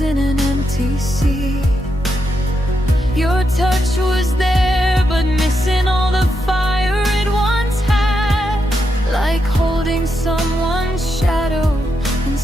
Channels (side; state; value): both; normal; correlation 0.83